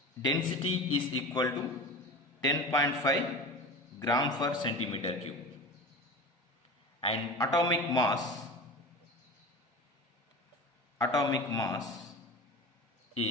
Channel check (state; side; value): normal; both; correlation 0.32